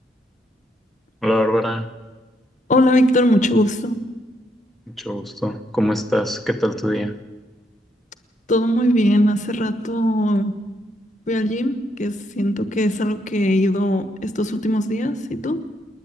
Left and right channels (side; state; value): both; normal; correlation 0.76